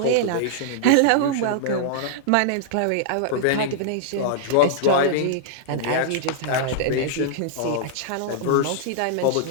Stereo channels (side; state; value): both; different; correlation -0.01